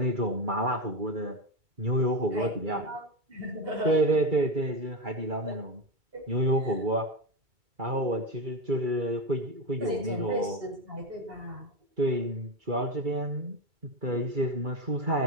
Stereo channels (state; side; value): late; left; 2.3 ms